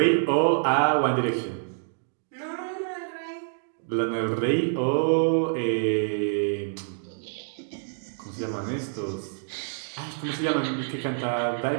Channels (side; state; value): left; silent; digital silence